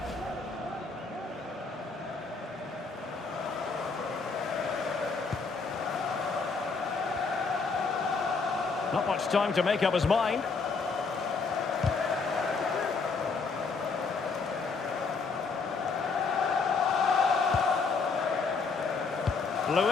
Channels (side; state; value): right; quieter; 4.6 dB